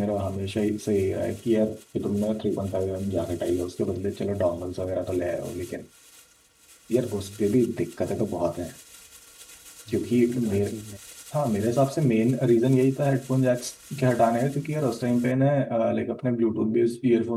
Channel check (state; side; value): identical; both; correlation 1.00